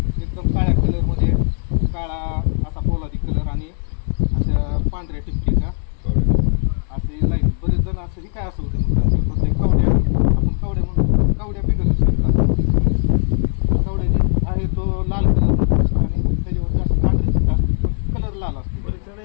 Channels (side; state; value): right; silent; 59 dB below the other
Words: एकदम काळ्या कलरमध्ये, काळा असा पोलादी कलर आणि असं पांढऱ्या टिपकीचा असे लाईन. बरेच जण असं काय असं होते कवड्या, आपण कवड्या म्हणून कवड्या बिघडू शकतात. कवड्याची आहे तो लाल कलर आणि त्याच्यावर जास्त पांढरे चिट्टा कलर लाल असतो.